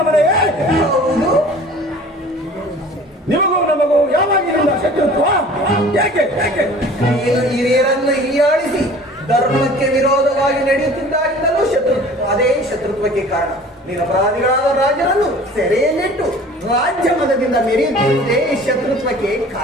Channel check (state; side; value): normal; both; correlation 0.46